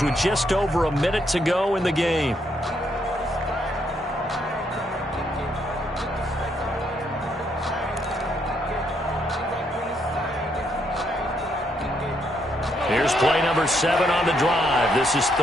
with just over a minute to go in the game. Here's play number 7 on the drive. This is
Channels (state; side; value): normal; both; correlation 0.74